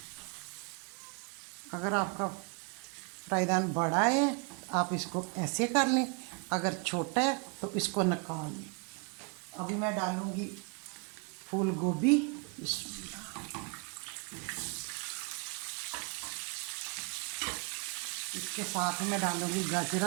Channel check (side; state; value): left; quieter; 34.1 dB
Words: अगर आपका फ्राईदान बड़ा है आप इसको ऐसे कर लें, अगर छोटा है तो इसको निकाल लें। अभी मैं डालूँगी फूल गोभी। इसके साथ में डालूँगी